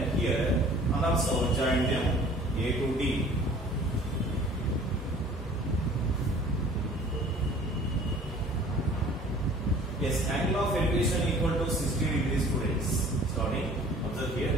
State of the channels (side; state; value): both; normal; correlation 0.50